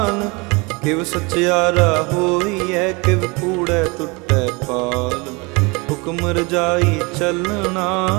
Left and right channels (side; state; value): left; quieter; 27.5 dB